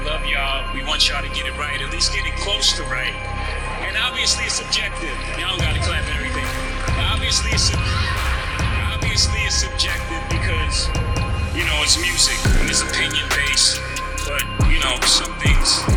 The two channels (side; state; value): both; identical; correlation 1.00